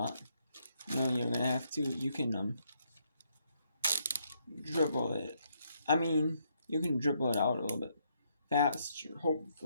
You're going to have to, you can dribble it. I mean, you can dribble it out a little bit faster,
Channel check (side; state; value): both; inverted; correlation -0.74